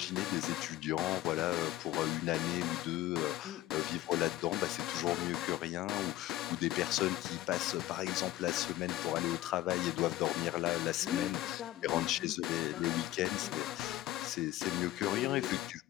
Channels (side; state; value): right; quieter; 15.5 dB